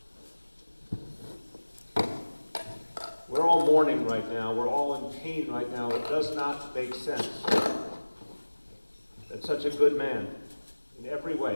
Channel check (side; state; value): both; inverted; correlation -1.00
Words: We're all mourning right now. We're all in pain right now. It does not make sense that such a good man, in every